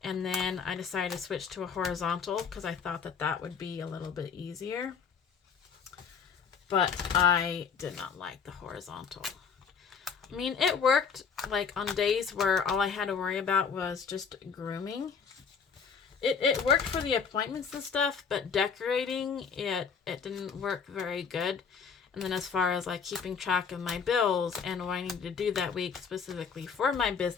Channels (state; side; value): quieter; right; 6.3 dB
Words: and then I decided to switch to a horizontal because I thought that that would be a little bit easier. But I did not like the horizontal. I mean, it worked like on days where all I had to worry about was just grooming. It worked for the appointments and stuff, but decorating, it didn't work very good. And then as far as like keeping track of my bills and what I needed to do that week specifically for my